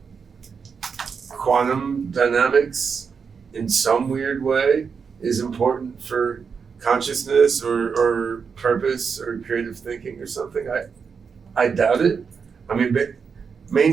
quantum dynamics in some weird way is important for consciousness or purpose or creative thinking or something. I doubt it.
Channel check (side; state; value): left; quieter; 5.9 dB